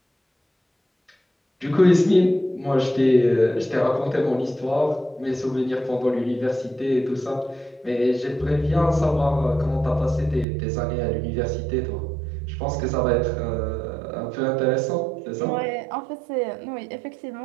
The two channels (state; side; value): drops out; left; at 10.5 s